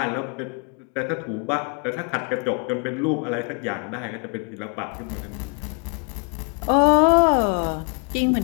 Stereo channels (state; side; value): quieter; right; 38.3 dB